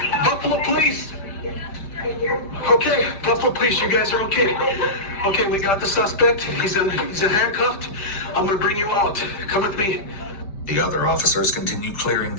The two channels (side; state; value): right; late; 5.1 ms